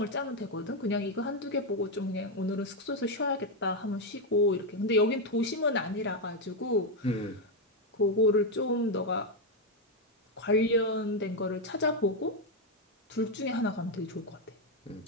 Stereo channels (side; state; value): both; normal; correlation 0.04